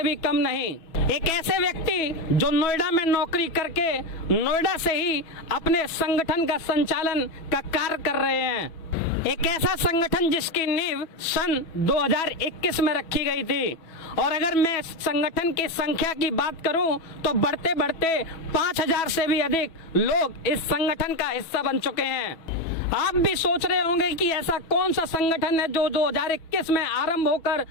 भी कम नहीं। एक ऐसे व्यक्ति जो नोएडा में नौकरी करके नोएडा से ही अपने संगठन का संचालन का कार्य कर रहे हैं। एक ऐसा संगठन जिसकी नींव सन 2021 में रखी गई थी, और अगर मैं संगठन की संख्या की बात करूं तो बढ़ते बढ़ते 5000 से भी अधिक लोग इस संगठन का हिस्सा बन चुके हैं। आप भी सोच रहे होंगे कि ऐसा कौन सा संगठन है जो 2021 में आरंभ होकर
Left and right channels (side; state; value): right; late; 6.1 ms